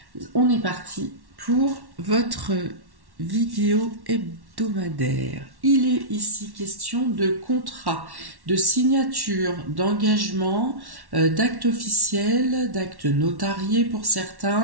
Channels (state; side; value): late; left; 1.1 ms